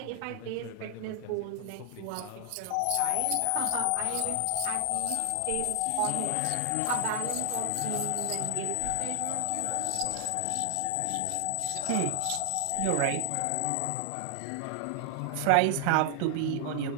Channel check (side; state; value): both; different; correlation 0.00